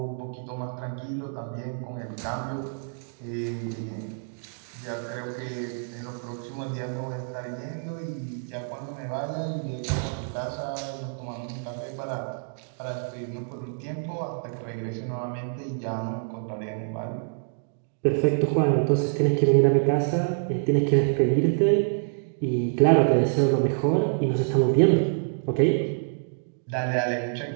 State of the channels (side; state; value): left; silent; digital silence